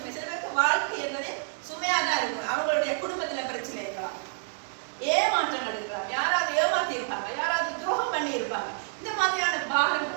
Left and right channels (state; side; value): silent; left; digital silence